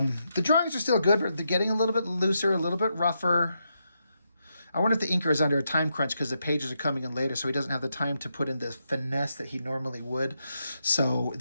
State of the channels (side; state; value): both; inverted; correlation -0.83